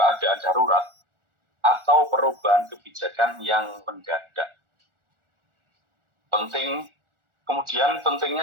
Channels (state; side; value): late; left; 1.4 ms